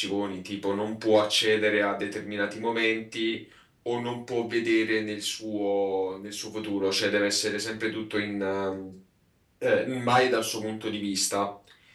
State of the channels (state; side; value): identical; both; correlation 1.00